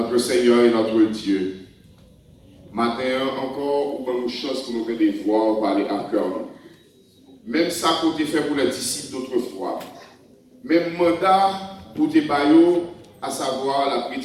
Seigneur et notre Dieu, matin encore, nous avons une chance pour nous faire des voix, parler à cœur. Même ça qu'on a fait pour les disciples d'autrefois. Même mandat pour tes baillots, à savoir la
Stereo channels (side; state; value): both; identical; correlation 1.00